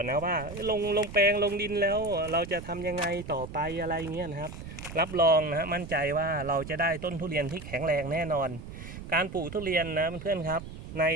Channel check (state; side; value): noise; right; rumble, 12 dB below the sound